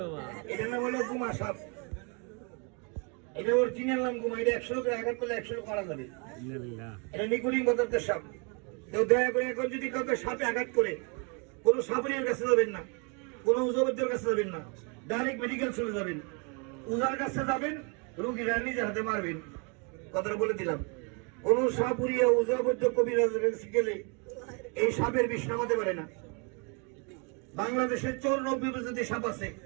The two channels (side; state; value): left; quieter; 34.4 dB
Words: বাবা এটা না বলে গুমা সাপ এটা ওর চিনের নাম গুমা এটা 100 লোকের আঘাত করলে 100 লোক মারা যাবে এটা নিকুলিং বদলতে সাপ তো দয়া করে এখন যদি কাউকে সাপে আঘাত করে কোনো সাপুরিয়ার কাছে যাবেন না কোনো উজবদ্যের কাছে যাবেন না ডাইরেক্ট মেডিকেল চলে যাবেন উজার কাছে যাবেন রোগীরা নিজের হাতে মারবেন কথাটা বলে দিলাম কোনো সাপুরিয়া উজবদ্য কবিরাজের কাছে গেলে এই সাপের বিষ নামাতে পারে না বাংলাদেশের 94 প্রজাতির সাপ আছে